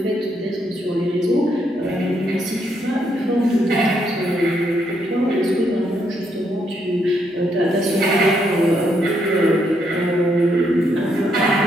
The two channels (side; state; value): both; normal; correlation 0.76